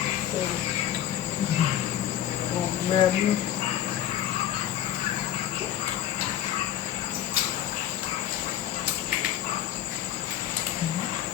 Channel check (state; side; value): quieter; right; 11.5 dB